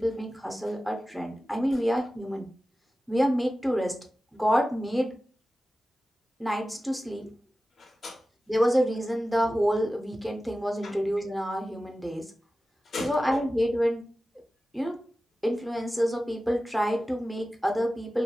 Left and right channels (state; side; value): normal; both; correlation 0.95